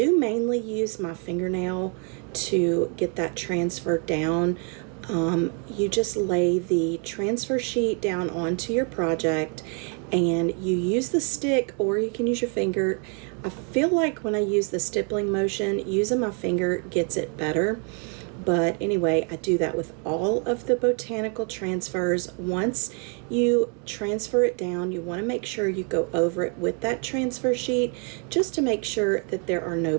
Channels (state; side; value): quieter; left; 39.1 dB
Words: mainly use my fingernail to get that transferred down. You just lay the transfer sheet down onto your project, and you use the stick, or you can use your finger. I feel like when I use the stippling motion, using my finger gets it better. But anyway, I do that with all of the botanical transfers. Once you transfer it down, you want to make sure you go over it with that transfer sheet, just to make sure that there are no